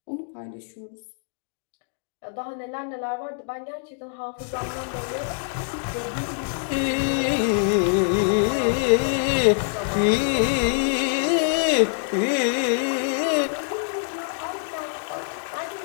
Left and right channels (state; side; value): silent; right; 62 dB below the other